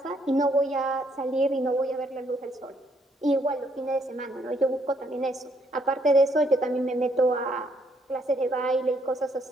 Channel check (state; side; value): normal; both; correlation 0.70